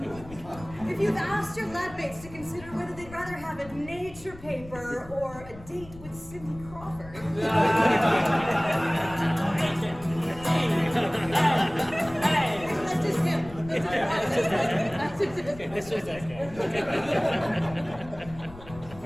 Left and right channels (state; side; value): noise; left; rumble, 17 dB below the sound